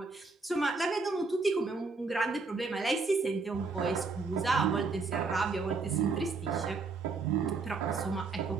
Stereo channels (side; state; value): left; quieter; 4.2 dB